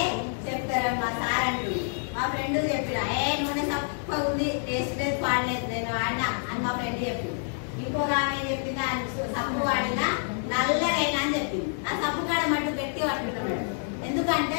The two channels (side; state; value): right; silent; 60 dB below the other